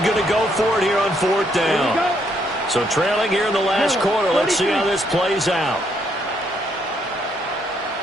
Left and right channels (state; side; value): normal; both; correlation 0.72